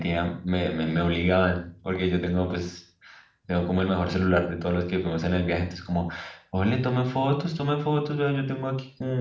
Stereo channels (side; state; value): both; identical; correlation 1.00